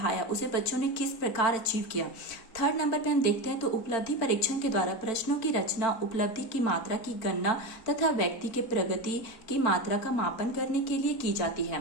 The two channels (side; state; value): right; late; 4.4 ms